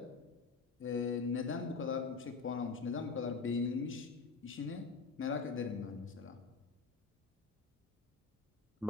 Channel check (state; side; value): quieter; right; 4.6 dB